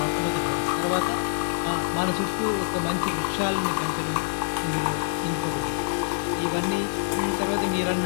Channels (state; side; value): silent; right; digital silence